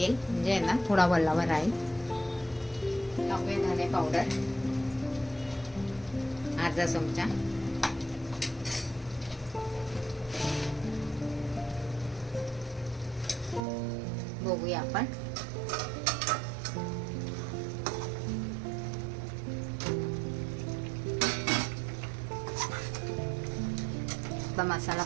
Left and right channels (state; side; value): drops out; left; at 13.6 s